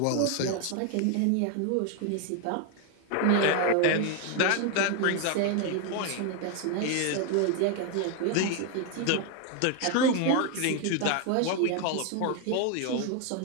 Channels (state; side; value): different; both; correlation 0.01